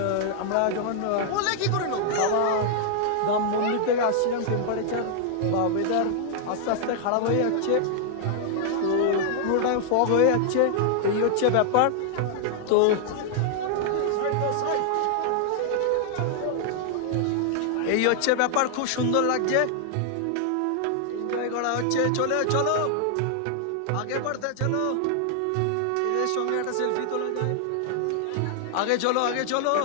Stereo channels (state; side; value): different; both; correlation 0.00